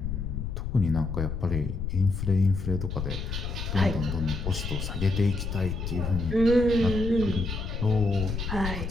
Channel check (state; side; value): noise; left; rumble, 4 dB below the sound